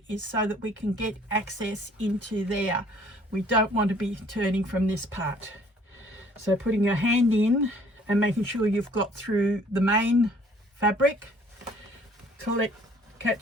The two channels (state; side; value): normal; both; correlation 0.57